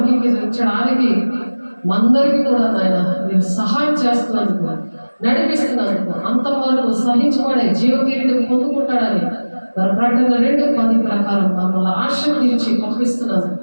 మందరికి కూడా నాయన మీరు సహాయం చేస్తున్నందుకు, నడిపిస్తున్నందుకు, అంతం వరకు సహించబడే జీవకిరీటం పొందుకుంటాడని మరి ప్రకటన 2:10 ప్రకారం మమ్మల్ని ఆశీర్వదించి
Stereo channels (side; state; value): both; inverted; correlation -1.00